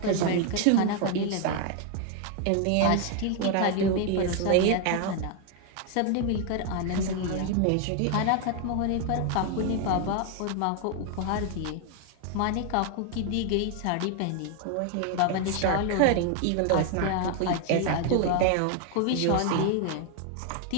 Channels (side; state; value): both; different; correlation 0.01